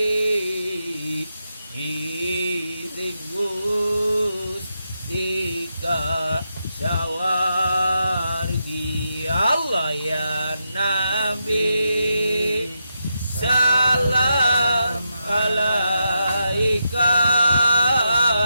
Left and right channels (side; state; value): both; inverted; correlation -0.85